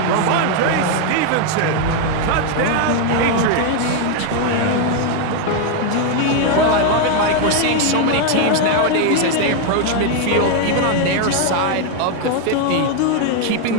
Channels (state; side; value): different; both; correlation 0.01